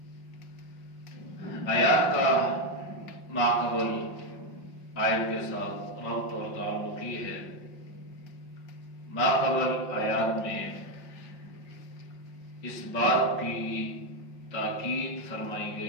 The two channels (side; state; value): right; late; 5.5 ms